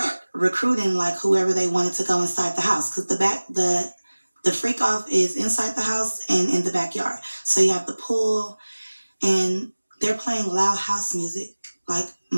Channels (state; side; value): inverted; both; correlation -1.00